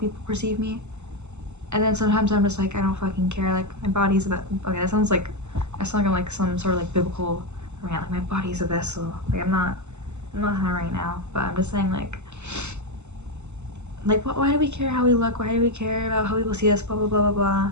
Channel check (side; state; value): left; late; 0.83 ms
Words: perceive me, and then sometimes I'm just like I don't fucking care. Like my body's a okay. That sounds like I sound like I'm like some sort of like biblical rant. Like my body's a vessel. Like I'm not that right now, but I'm just saying like why do we care how we look? Why do we care about how people see us? Blah blah blah blah blah.